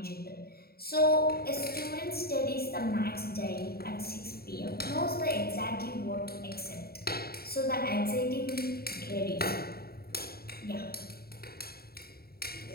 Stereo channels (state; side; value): late; right; 0.45 ms